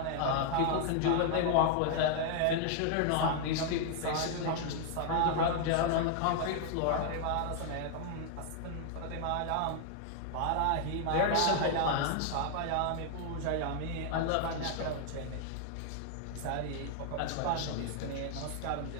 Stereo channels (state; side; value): different; both; correlation 0.00